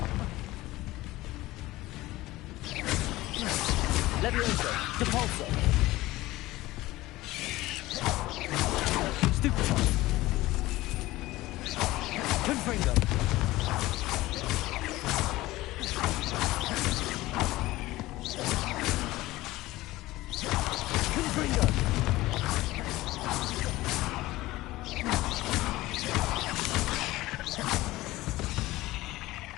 Levioso! Depulso! Stupefy! Confringo! Confringo!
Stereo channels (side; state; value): right; quieter; 18.0 dB